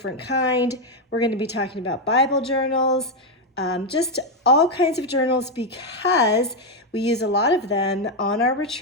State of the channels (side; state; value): both; normal; correlation 0.04